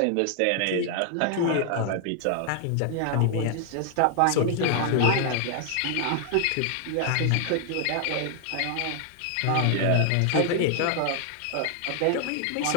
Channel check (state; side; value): different; both; correlation 0.00